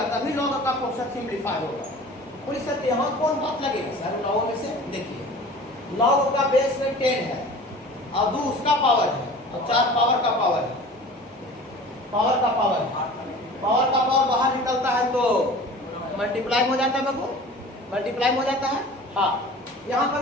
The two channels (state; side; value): normal; both; correlation 0.41